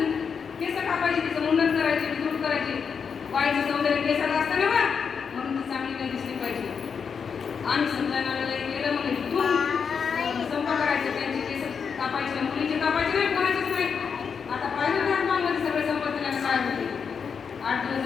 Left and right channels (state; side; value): quieter; right; 6.3 dB